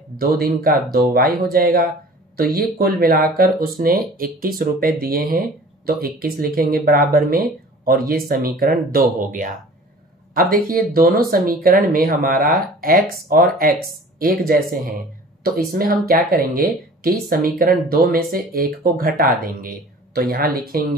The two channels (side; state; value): both; normal; correlation 0.45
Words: 2 दिन का 2y हो जाएगा। तो ये कुल मिलाकर उसने 21 रुपए दिए हैं, तो 21 लिखेंगे बराबर में और ये समीकरण 2 हो गया। अब देखिए दोनों समीकरण में हमारा x और x एक जैसे हैं, तो इसमें हम क्या करेंगे कि समीकरण 2 में से एक को घटा देंगे। तो यहां